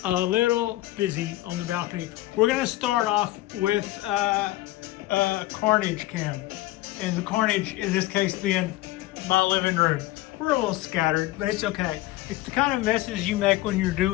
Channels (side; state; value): right; quieter; 17.2 dB